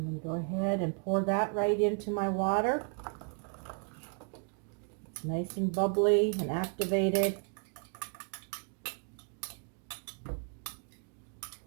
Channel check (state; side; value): quieter; left; 38.1 dB